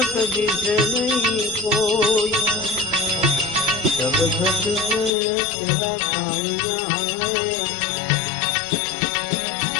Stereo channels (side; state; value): right; drops out; at 5.1 s